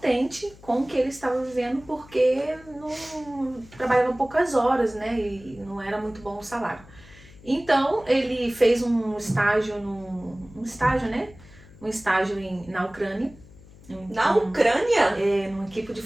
com o que ele estava vivendo, porque não trabalhava poucas horas, né, e não era muito bom o salário. Então ele fez um estágio, na Ucrânia. Na Ucrânia? Numa equipe de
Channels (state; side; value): noise; left; hum, 22 dB below the sound